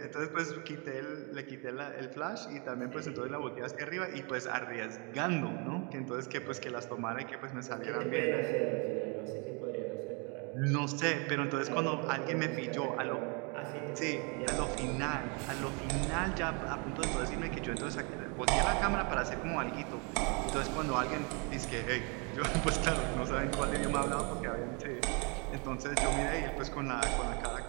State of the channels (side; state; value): left; quieter; 33.1 dB